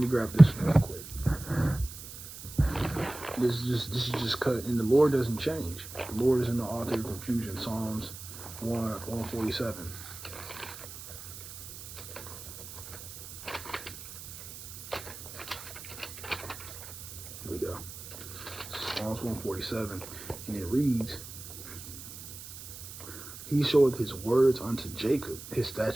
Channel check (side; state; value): right; noise; hiss, 13 dB below the sound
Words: grab this real quick. This is just cut, and the Lord doesn't change. The Lord is in the author of confusion. Psalms 147. Here we go. Psalms 147, and it reads, He showeth his words unto Jacob, his